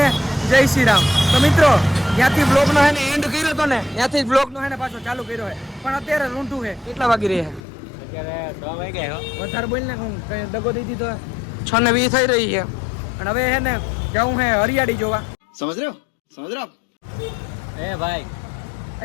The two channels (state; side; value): drops out; right; at 7.6 s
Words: જય શ્રી રામ. તો મિત્રો, ત્યાંથી બ્લોગનો હે ને એન્ડ કર્યો હતો ને, ત્યાંથી બ્લોગનો હે ને પાછો ચાલુ કર્યો છે. પણ અત્યારે રૂંઢું છે. કેટલા વાગી રહ્યા? અત્યારે 6 વાગ્યા. વધારે બોલ ને, હું કઈ દગો દઈ દીધો. 6:20 થઈ રહી છે. અને હવે હે ને જાઉં હે હરિયાળી જોવા. સમજ રહ્યો એ ભાઈ,